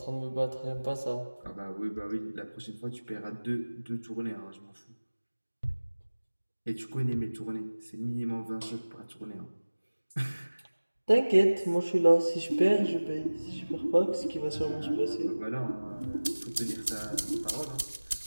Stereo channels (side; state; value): both; inverted; correlation -1.00